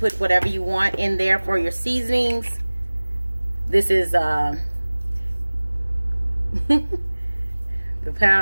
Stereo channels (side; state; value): both; inverted; correlation -1.00